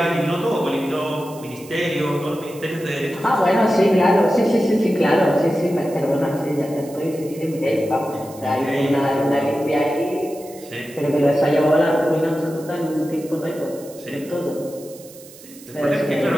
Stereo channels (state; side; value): noise; right; hiss, 20 dB below the sound